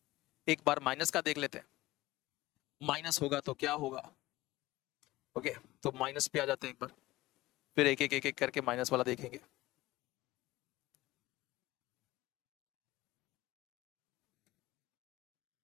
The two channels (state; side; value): quieter; right; 18.1 dB